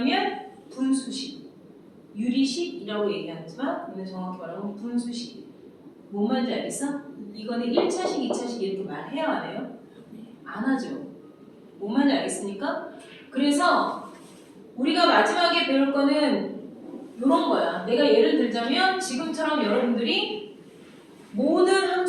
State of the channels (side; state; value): both; identical; correlation 1.00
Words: 분수라고 얘기하지만 이는 정확히 말하면 분수식. 뭔 말인지 알겠어? 이거는 1차식, 2차식 이렇게 말해야 안 해요? 안 하죠. 뭔 말인지 알겠습니까? 그래서 우리가 마지막에 배울 거는 이런 거야. 내가 예를 들자면 지금처럼 여러분들이 모든